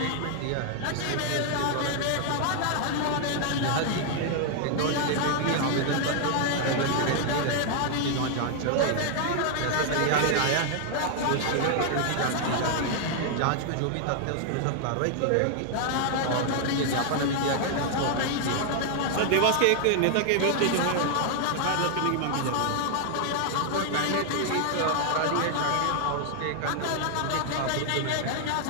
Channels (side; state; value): both; different; correlation 0.00